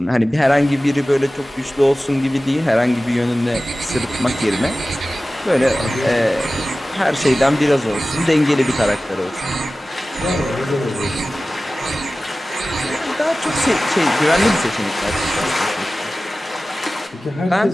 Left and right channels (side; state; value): both; normal; correlation 0.96